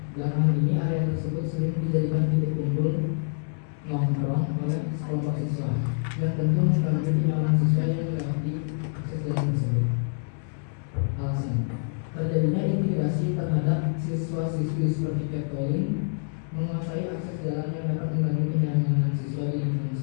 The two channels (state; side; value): silent; right; 60 dB below the other